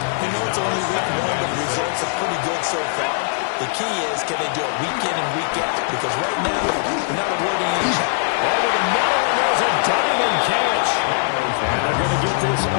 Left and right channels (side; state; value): right; silent; digital silence